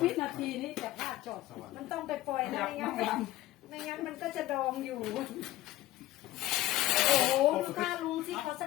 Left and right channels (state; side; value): quieter; right; 16.1 dB